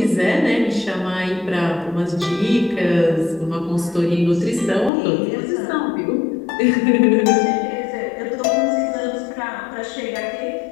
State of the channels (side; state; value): right; drops out; at 4.9 s